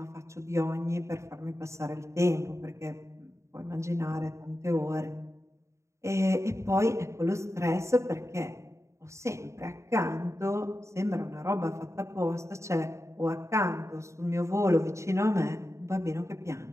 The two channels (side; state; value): left; late; 0.14 ms